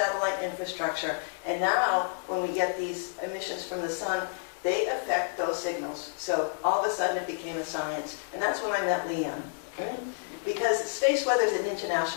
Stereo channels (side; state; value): right; silent; digital silence